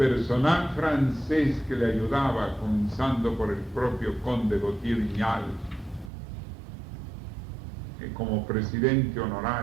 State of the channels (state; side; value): drops out; left; at 6.1 s